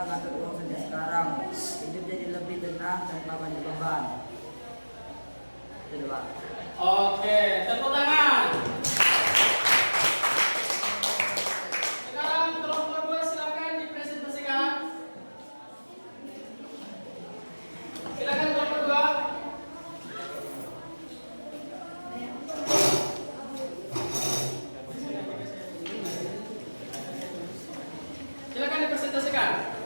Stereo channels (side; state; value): both; inverted; correlation -1.00